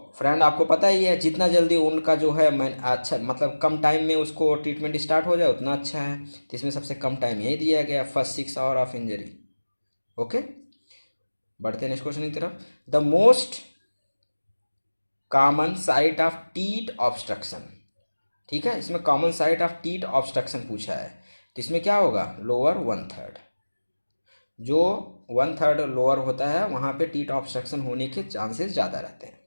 फ्रेंड आपको पता ही है, जितना जल्दी वुंड का जो है अच्छा, मतलब कम टाइम में उसको ट्रीटमेंट स्टार्ट हो जाए उतना अच्छा है, तो इसमें सबसे कम टाइम यही दिया गया, first 6 hour of injury. Okay, बढ़ते हैं नेक्स्ट क्वेश्चन की तरफ। The most common site of teeth obstruction. ठीक है, इसमें common site of teeth obstruction पूछा है, तो इसमें क्या होगा, लोअर 1/3, जो 1/3 लोअर होता है वहाँ पे टीथ ऑब्स्ट्रक्शन होने के चांसेस ज़्यादा रहते हैं।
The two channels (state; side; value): inverted; both; correlation -1.00